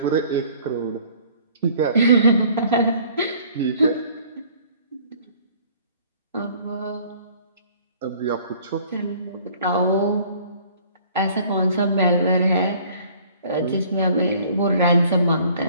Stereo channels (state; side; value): inverted; both; correlation -0.54